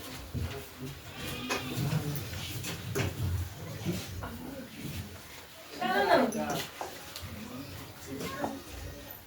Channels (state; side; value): identical; both; correlation 1.00